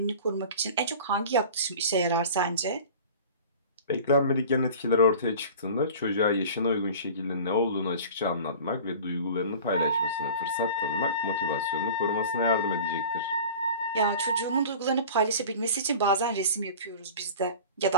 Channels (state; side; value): inverted; both; correlation -0.39